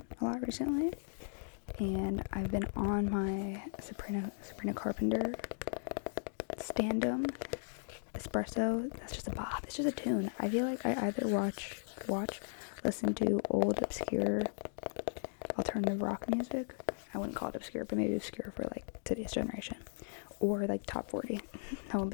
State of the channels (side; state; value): right; silent; digital silence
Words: a lot recently, and I've been on my Sabrina Carpenter Standum Espresso. That's just a bop. It's just a tune. I feel like I either listen to old obscure alternative rock music. I wouldn't call it obscure, but maybe obscure for like today's generation, or like top 40. No in